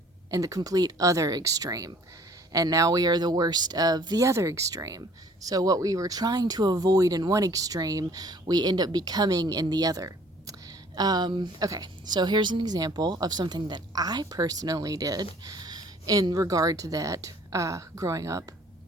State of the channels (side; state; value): both; normal; correlation 0.55